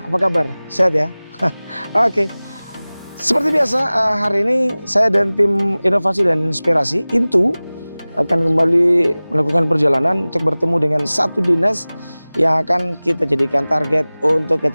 Apa kabar? Sehat ya? Oke. Seperti biasa, hari ini saya dan tim Inovasi dan Inspirasi Intu akan kembali melakukan perjalanan untuk bertemu dengan satu dinas yang akan kita jadikan target untuk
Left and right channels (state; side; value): inverted; both; correlation -0.99